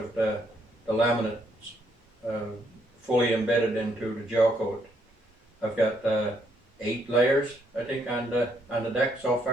the laminates fully embedded into the gel coat. I've got 8 layers, I think, on the deck so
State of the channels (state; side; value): normal; both; correlation 0.73